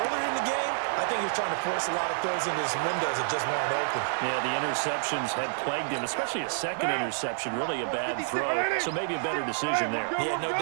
in the game, I think he was trying to force a lot of throws into his windows that just weren't open. Yeah, the interceptions had plagued him, especially a second interception, really a bad throw. So maybe a better decision there. Yeah, no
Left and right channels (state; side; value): silent; left; 59 dB below the other